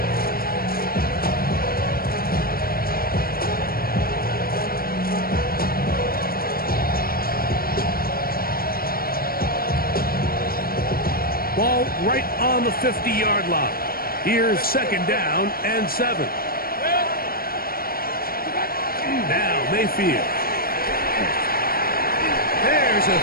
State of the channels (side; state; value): right; late; 0.43 ms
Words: Ball right on the 50-yard line. Here's second down and 7. Now Mayfield. There's a